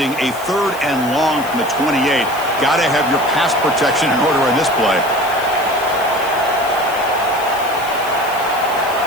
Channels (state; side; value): noise; left; hiss, 16 dB below the sound